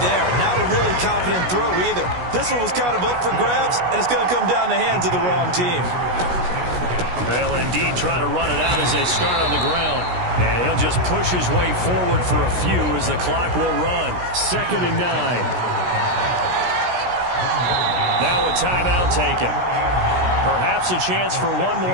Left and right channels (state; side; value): late; left; 16 ms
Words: Not a really confident throw either. This one was kind of up for grabs, and it's going to come down the hands of the wrong team. They'll indeed try to run it out as they start on the ground. And he'll just push his way forward for a few as the clock will run. 2nd and 9. Now a timeout taken. Perhaps a chance for one